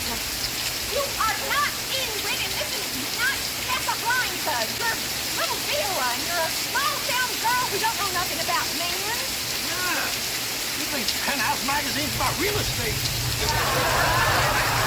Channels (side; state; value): both; identical; correlation 1.00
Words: You are not Ingrid, and this is not Casablanca. You're little Vera, and you're a small-town girl who don't know nothing about men. Yeah. You think Penthouse magazine's about real estate?